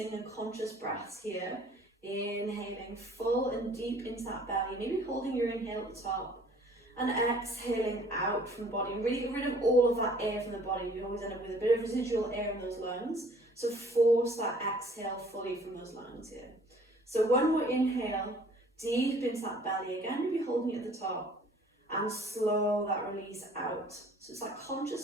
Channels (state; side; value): normal; both; correlation 0.55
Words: and conscious breaths here. Inhaling full and deep into that belly, maybe holding your inhale at the top. And exhaling out from the body, and really get rid of all of that air from the body. You always end up with a bit of residual air in those lungs, so force that exhale fully from those lungs here. So one more inhale, deep into that belly, again maybe holding it at the top, and slow that release out. So it's that